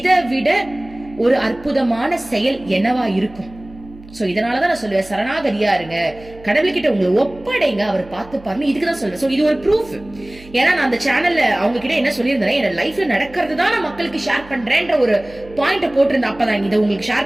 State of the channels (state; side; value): noise; right; hum, 21 dB below the sound